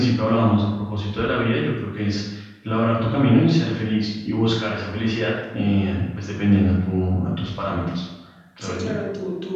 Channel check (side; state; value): both; identical; correlation 1.00